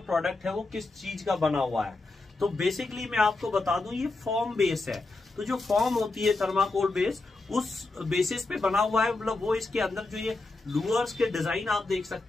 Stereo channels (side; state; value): right; quieter; 3.3 dB